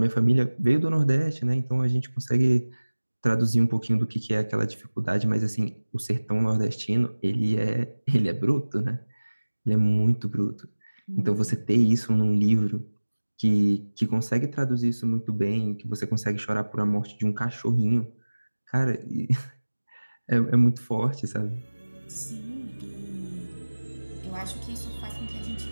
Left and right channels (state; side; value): inverted; both; correlation -1.00